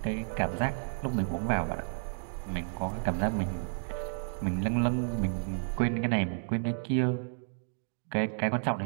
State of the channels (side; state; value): left; silent; digital silence